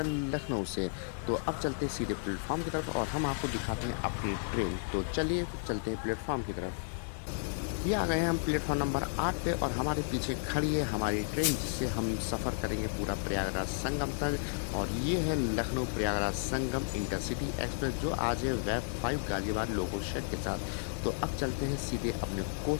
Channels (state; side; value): silent; right; 56 dB below the other